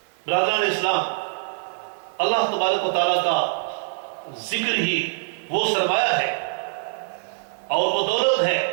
برادران اسلام، اللہ تبارک و تعالیٰ کا ذکر ہی وہ سرمایہ ہے اور وہ دولت ہے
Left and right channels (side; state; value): left; silent; digital silence